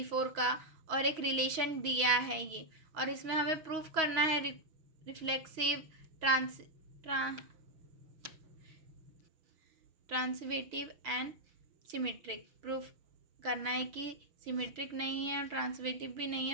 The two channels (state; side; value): late; left; 6.3 ms